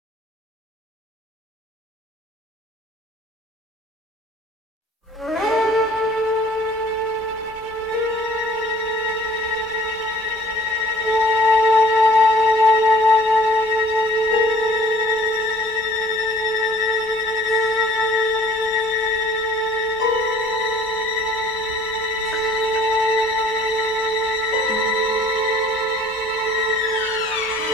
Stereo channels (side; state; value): both; normal; correlation 0.52